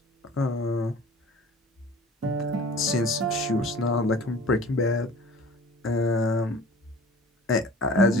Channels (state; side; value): normal; both; correlation 0.44